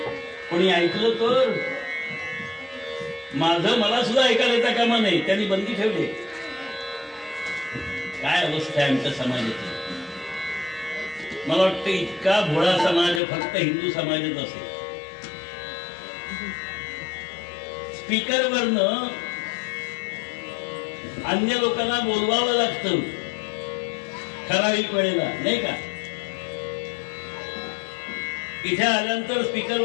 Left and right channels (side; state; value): right; drops out; at 13.2 s